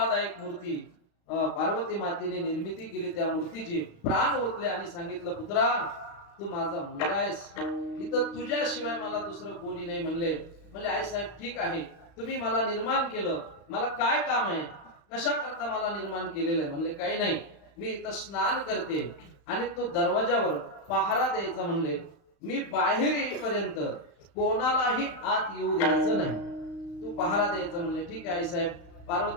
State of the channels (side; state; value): right; late; 35 ms